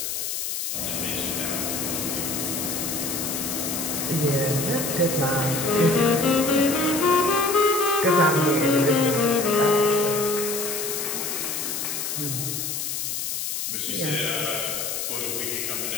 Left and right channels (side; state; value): left; noise; hiss, 3 dB below the sound